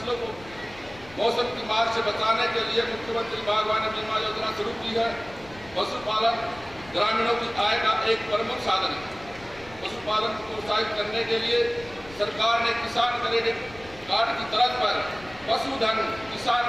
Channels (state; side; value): noise; left; rumble, 21 dB below the sound